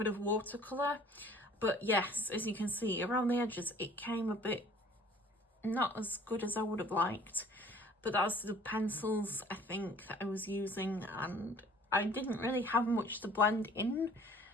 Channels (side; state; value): both; normal; correlation 0.51